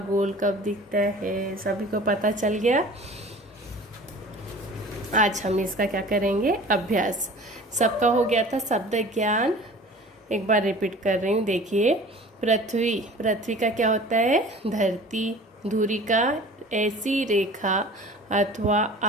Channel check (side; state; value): both; normal; correlation 0.43